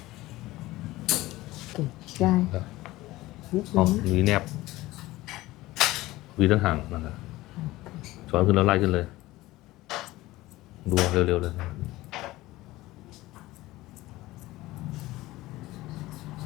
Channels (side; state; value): right; quieter; 18.1 dB